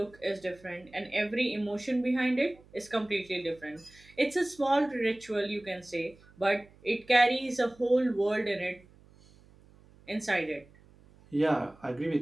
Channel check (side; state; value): right; noise; hum, 26 dB below the sound